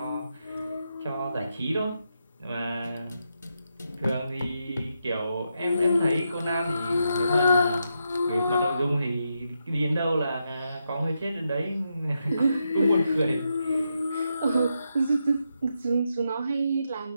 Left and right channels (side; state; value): both; inverted; correlation -0.83